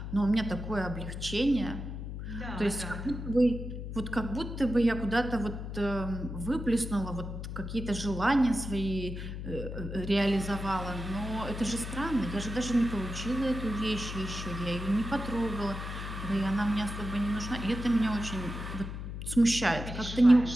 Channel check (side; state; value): left; noise; hum, 7 dB below the sound